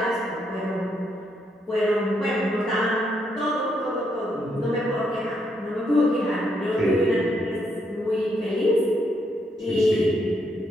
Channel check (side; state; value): both; normal; correlation 0.76